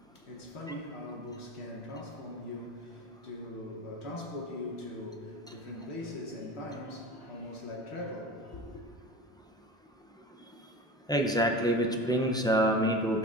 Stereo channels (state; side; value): normal; both; correlation 0.33